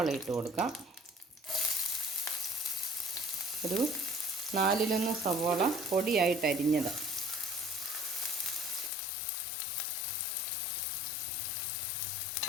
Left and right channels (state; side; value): drops out; right; at 8.9 s